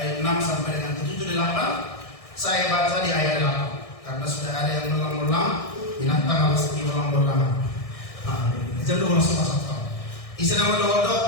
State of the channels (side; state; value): right; late; 1.6 ms